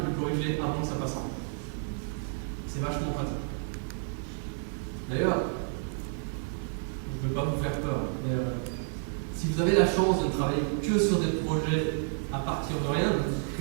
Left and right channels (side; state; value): left; silent; 58 dB below the other